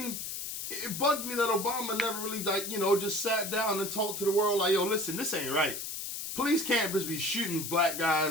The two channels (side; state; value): left; noise; hiss, 6 dB below the sound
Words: it bugged me that Obama never really, just sat down and talked to the world like, yo, listen, this ain't right. Police can't just be shooting black